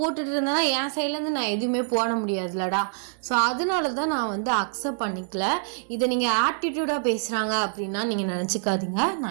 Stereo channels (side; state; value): left; silent; 60 dB below the other